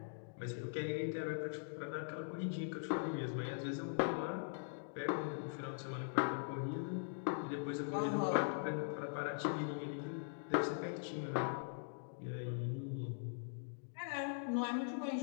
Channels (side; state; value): right; silent; digital silence